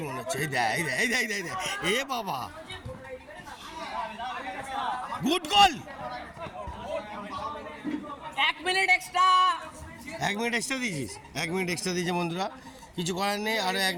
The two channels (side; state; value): both; identical; correlation 1.00